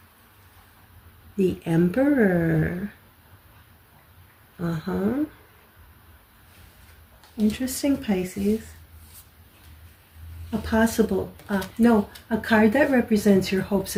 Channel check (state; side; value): identical; both; correlation 1.00